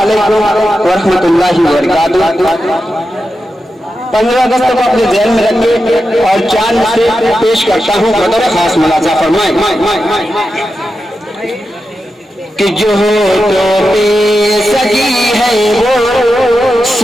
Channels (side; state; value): both; normal; correlation 0.90